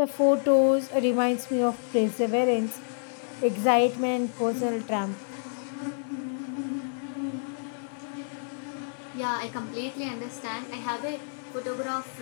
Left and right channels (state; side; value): silent; right; digital silence